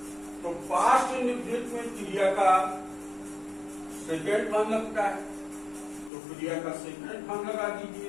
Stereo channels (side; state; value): right; drops out; at 6.1 s